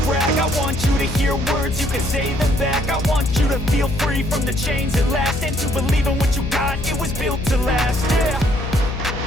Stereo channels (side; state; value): left; noise; hum, 5 dB below the sound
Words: brag. I want you to hear words, you can say them back. I want you to feel free from the chains at last, and to believe in what you got, it was built to last, yeah.